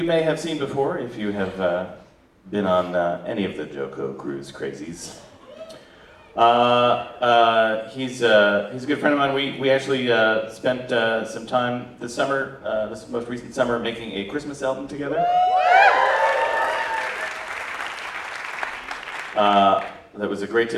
may have seen before if you have been on any of the JoCo cruise crazies. He's a good friend of mine. We actually spent some time this summer, this most recent summer, making a Christmas album together. That was a great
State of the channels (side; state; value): both; identical; correlation 1.00